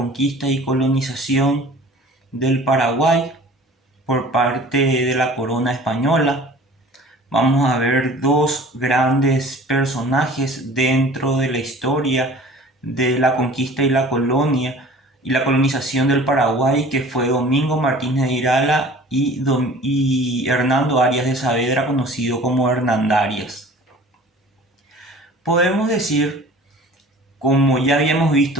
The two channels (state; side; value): normal; both; correlation 0.45